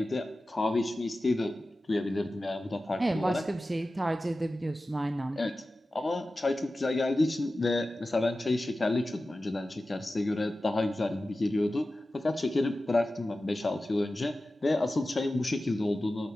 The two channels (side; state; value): both; normal; correlation 0.95